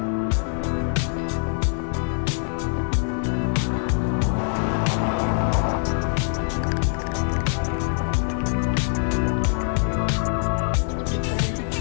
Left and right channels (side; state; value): right; silent; 63 dB below the other